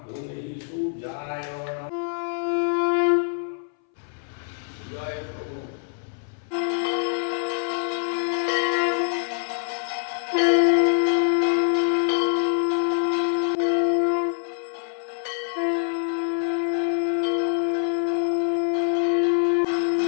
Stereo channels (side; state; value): right; silent; 61 dB below the other